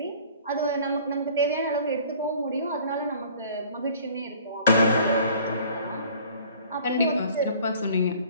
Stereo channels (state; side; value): inverted; both; correlation -0.50